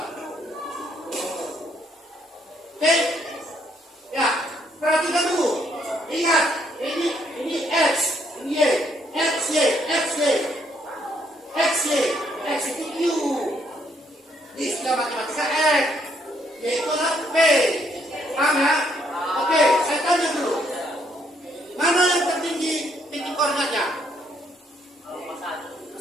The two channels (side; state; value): both; normal; correlation 0.71